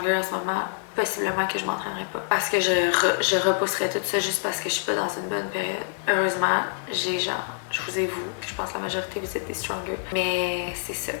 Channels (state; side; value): silent; right; digital silence